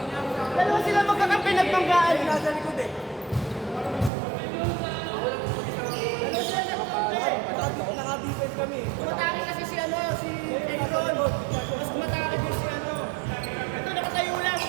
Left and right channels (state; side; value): drops out; left; at 4.1 s